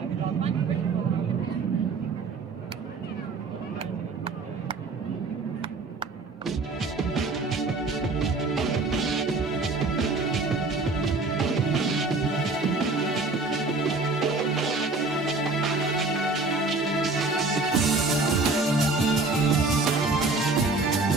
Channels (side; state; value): left; quieter; 3.6 dB